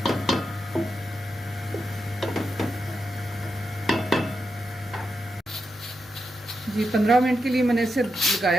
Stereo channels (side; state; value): both; normal; correlation 0.86